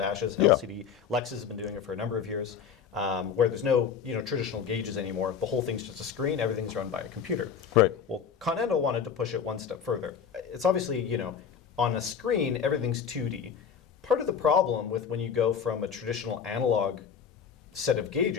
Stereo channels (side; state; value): right; quieter; 7.2 dB